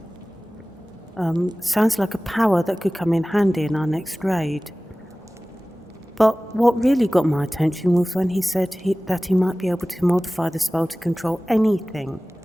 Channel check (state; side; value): normal; both; correlation 0.98